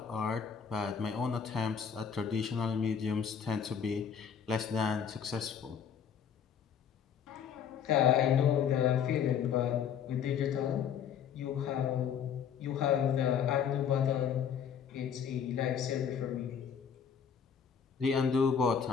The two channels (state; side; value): quieter; right; 7.7 dB